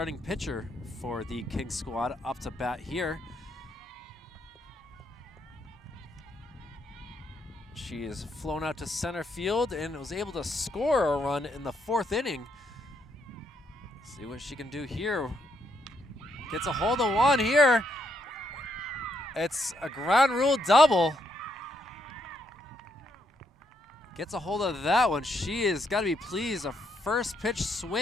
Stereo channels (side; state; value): both; normal; correlation 0.76